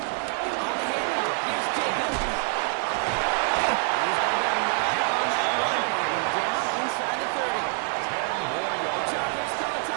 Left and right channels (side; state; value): left; quieter; 37.2 dB